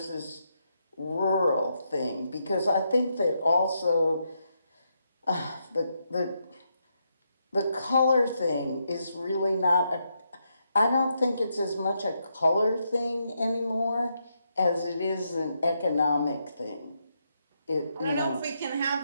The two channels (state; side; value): inverted; both; correlation -0.81